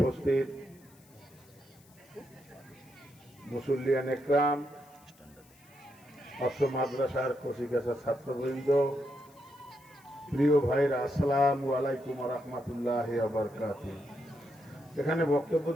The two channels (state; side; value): noise; left; hiss, 28 dB below the sound